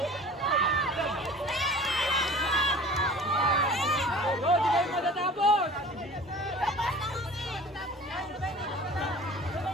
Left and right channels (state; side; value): normal; both; correlation 0.43